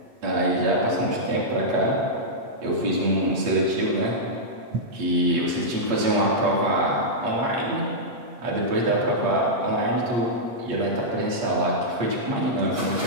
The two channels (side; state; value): left; late; 8.3 ms